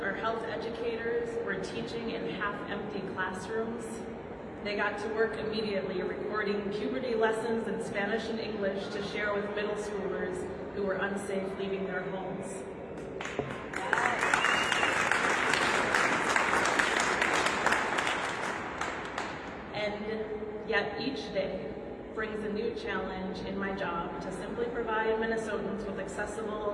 our health educators were teaching in half-empty classrooms. They got to work immediately recording puberty lessons in Spanish and English to share with middle schoolers who were unsafe leaving their homes. And yet each day brings a new challenge in my job to simply provide Minnesotans with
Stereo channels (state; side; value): identical; both; correlation 1.00